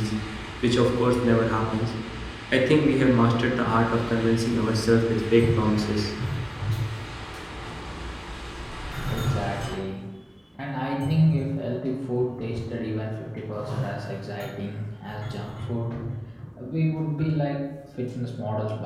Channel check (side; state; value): both; identical; correlation 1.00